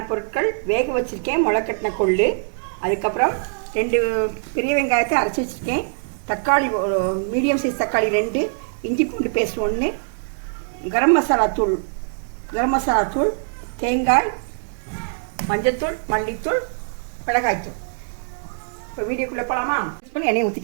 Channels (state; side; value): silent; left; digital silence